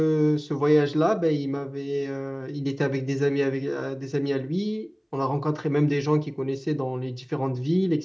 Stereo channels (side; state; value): both; identical; correlation 1.00